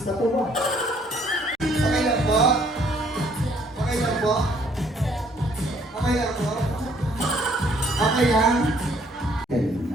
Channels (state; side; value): normal; both; correlation 0.63